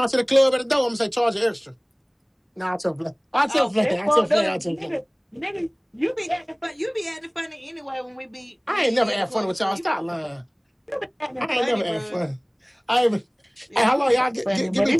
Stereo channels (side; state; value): both; identical; correlation 1.00